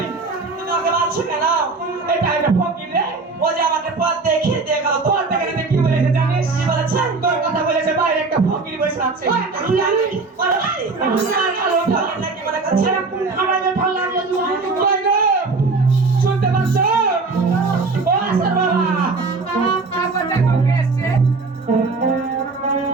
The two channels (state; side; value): quieter; left; 3.9 dB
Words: ফকির রে ও যে আমাকে পথ দেখিয়ে দিয়ে গেল তোর থেকে যদি কি বলেছে জানিস কি বলেছে? তোর কথা বলেছে বাইরে একটা ফকির বসে আছে আমি জানি বলো ভাই ফকির নাকি মনে করছে আমার যে ভালো লাগলো তুমি কই গো? শুনতে পাচ্ছ ও আসার বাবা আবার দেখো কে এসছে